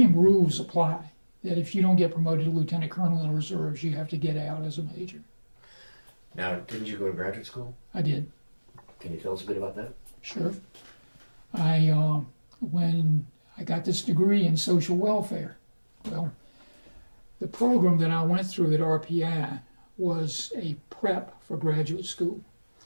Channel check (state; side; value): inverted; both; correlation -1.00